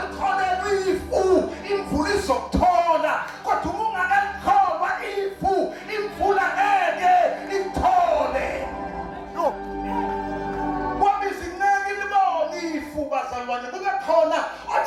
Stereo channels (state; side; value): identical; both; correlation 1.00